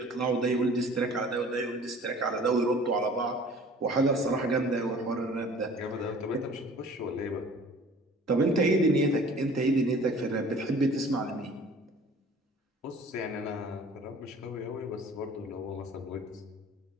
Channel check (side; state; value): both; normal; correlation 0.48